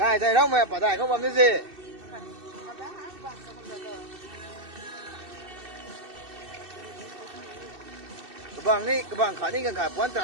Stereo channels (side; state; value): left; late; 2.6 ms